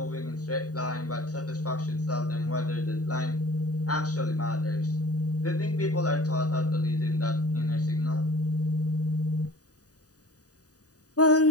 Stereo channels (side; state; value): right; late; 0.67 ms